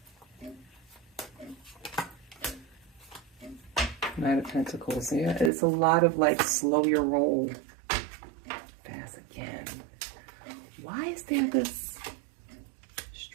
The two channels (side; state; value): left; drops out; at 5.5 s